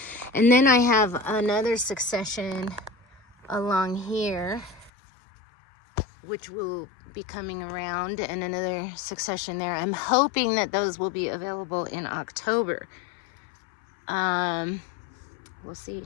And then I have another succession along here, which will be coming around, and another succession there. I'm hoping that those will be available in October. We'll see.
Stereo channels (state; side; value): drops out; right; at 4.9 s